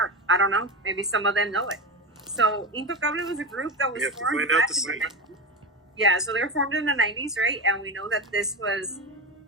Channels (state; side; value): normal; both; correlation 0.20